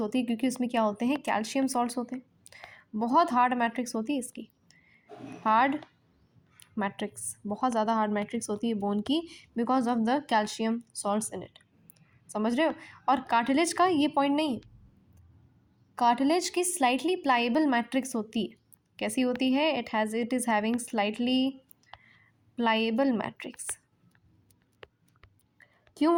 है, क्योंकि उसमें क्या होते हैं, कैल्शियम सॉल्ट्स होते हैं, बहुत हार्ड मैट्रिक्स होती है इसकी, हार्ड मैट्रिक्स, बहुत ज़्यादा हार्ड मैट्रिक्स होती है बोन की, because of the calcium salts in it. समझ रहे हो। और कार्टिलेज का ये पॉइंट नहीं, कार्टिलेज की स्लाइटली प्लाइबल मैट्रिक्स होती है। कैसी होती है, it is having slightly pliable matrix. क्यों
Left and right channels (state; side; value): identical; both; correlation 1.00